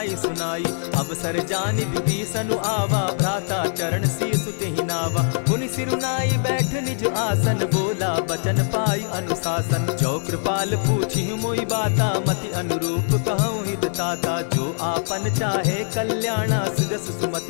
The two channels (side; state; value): right; silent; digital silence